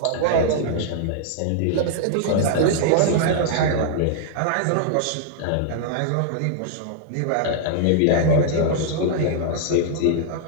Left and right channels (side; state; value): both; different; correlation -0.01